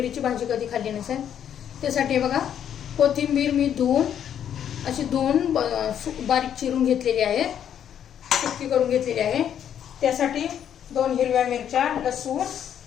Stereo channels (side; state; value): right; quieter; 9.4 dB